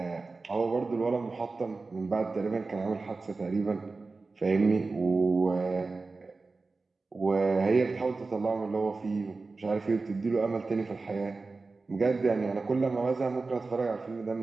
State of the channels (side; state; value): left; quieter; 3.8 dB